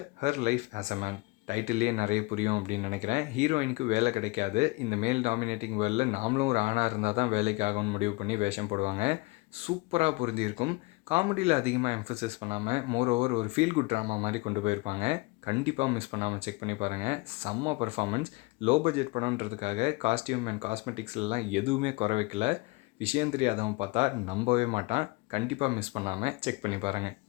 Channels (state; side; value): quieter; right; 24.4 dB